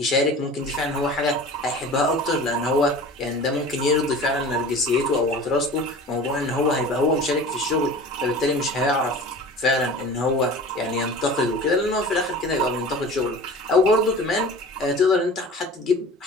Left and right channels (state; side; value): normal; both; correlation 0.39